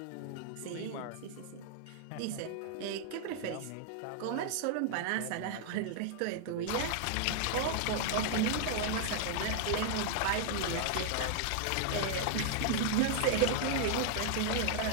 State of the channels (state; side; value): different; both; correlation 0.00